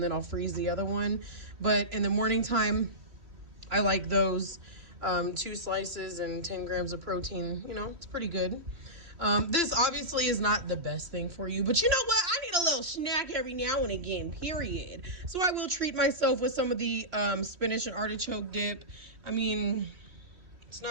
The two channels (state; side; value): late; left; 3.1 ms